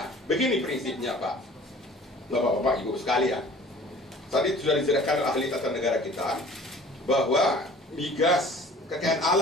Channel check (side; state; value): both; normal; correlation 0.48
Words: Begini prinsipnya, Pak, Bapak-bapak, Ibu sekalian. Tadi sudah dijelaskan oleh ahli tata negara kita bahwa migas kekayaan